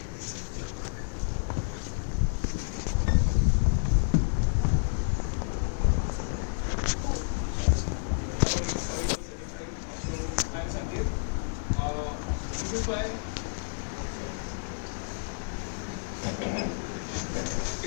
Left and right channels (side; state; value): right; silent; digital silence